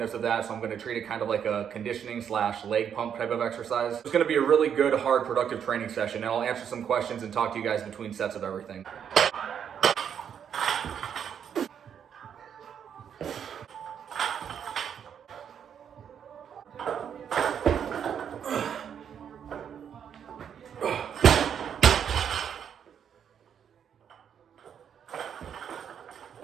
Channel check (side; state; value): left; quieter; 8.3 dB